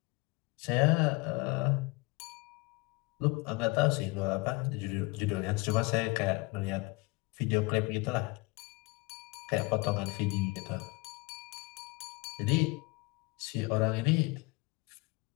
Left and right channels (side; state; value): right; quieter; 24.6 dB